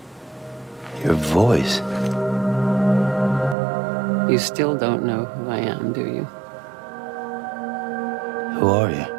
Your voice. You still don't know who I am, do you? Who are you?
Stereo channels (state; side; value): drops out; left; at 3.6 s